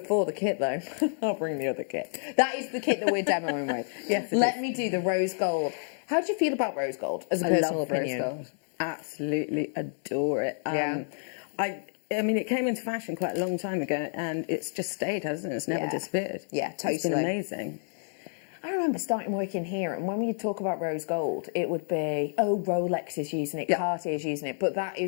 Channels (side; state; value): right; silent; digital silence